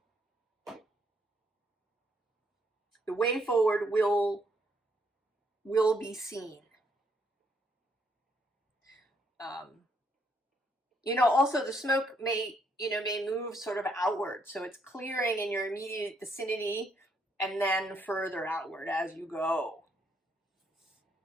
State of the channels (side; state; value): both; normal; correlation 0.72